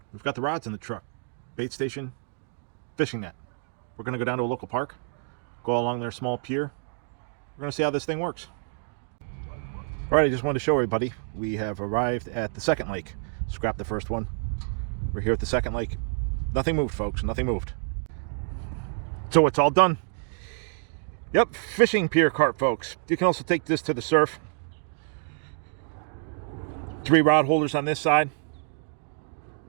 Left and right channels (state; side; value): silent; left; 60 dB below the other